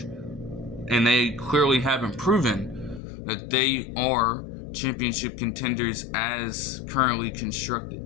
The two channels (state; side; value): drops out; right; at 3.0 s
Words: and they clearly haven't proven that they are championship contenders as currently constructed.